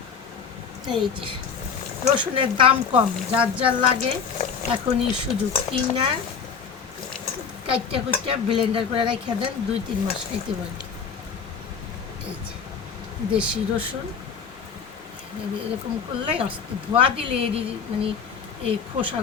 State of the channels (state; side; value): quieter; right; 6.3 dB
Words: এই যে রসুনের দাম কম, যার যার লাগে এখনই সুযোগ, কিনা কাইটটা কুইটটা ব্লেন্ডার করে রেখে দেন, 2-3 মাস খাইতে পারেন। এই যে দেশি রসুন এরকম করলে ধোয়া দিলে এরই মানে এই